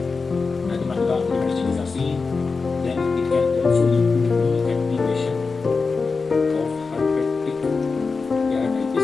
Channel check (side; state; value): right; quieter; 4.5 dB